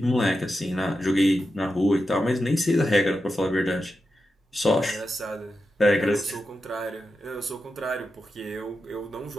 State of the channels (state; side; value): normal; both; correlation 0.89